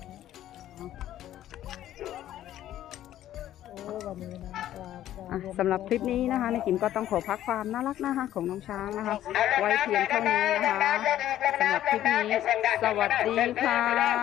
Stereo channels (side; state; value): right; quieter; 12.6 dB